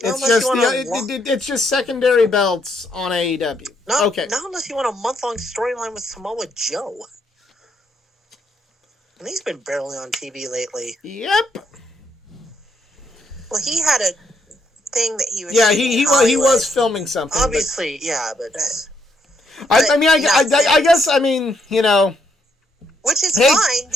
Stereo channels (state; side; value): normal; both; correlation 0.75